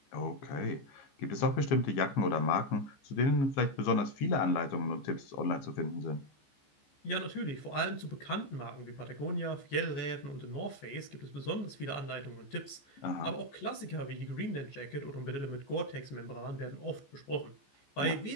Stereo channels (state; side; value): late; right; 14 ms